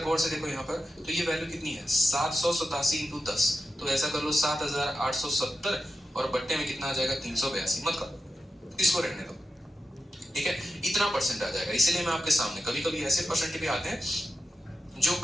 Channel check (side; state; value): both; normal; correlation 0.90